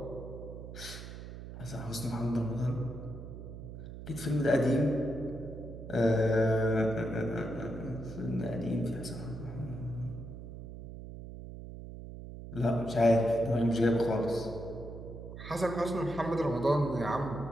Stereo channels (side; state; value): right; noise; hum, 11 dB below the sound